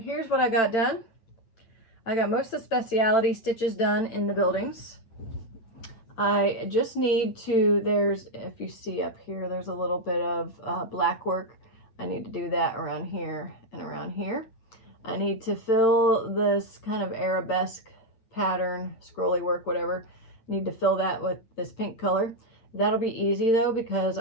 what I got done. I got most of the specialty stitches done in the buildings. I just need to, if you see up here, there's a little bit of black work. I need to do that around here and around here. I need to fill this kind of arabesque pattern, scrolly work, whatever. Need to fill that with this pink color. That'll be easy though, because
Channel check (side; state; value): right; late; 8.9 ms